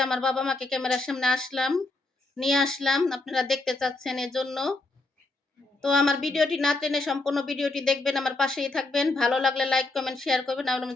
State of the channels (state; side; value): quieter; right; 3.1 dB